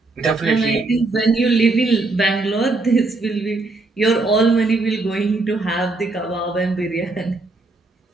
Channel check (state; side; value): quieter; left; 3.3 dB